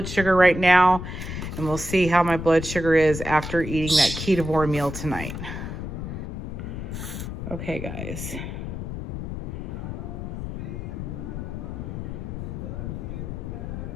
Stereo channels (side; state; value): left; noise; rumble, 6 dB below the sound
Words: sugar right now, and we'll see how my blood sugar is after eating that Ketovore meal tonight. Okay, guys.